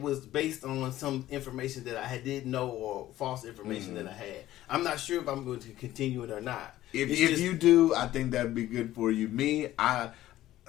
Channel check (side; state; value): right; quieter; 14.4 dB